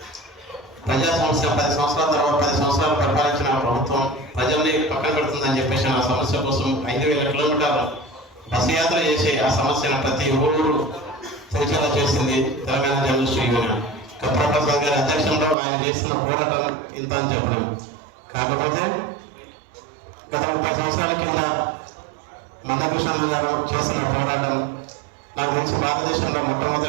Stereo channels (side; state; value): left; drops out; at 15.6 s